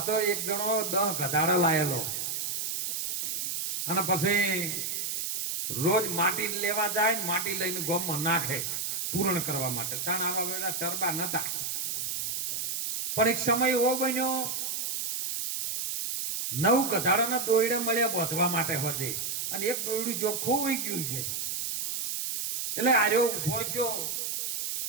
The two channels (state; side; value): noise; right; hiss, 2 dB below the sound